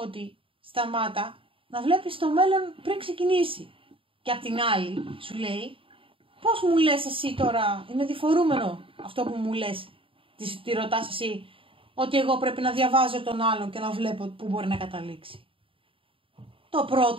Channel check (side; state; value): left; late; 0.26 ms